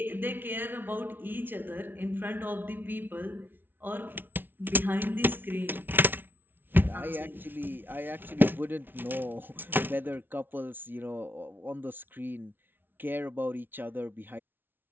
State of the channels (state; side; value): late; left; 0.098 ms